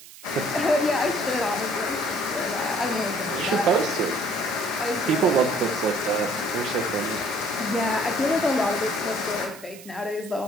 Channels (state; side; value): noise; right; hiss, 18 dB below the sound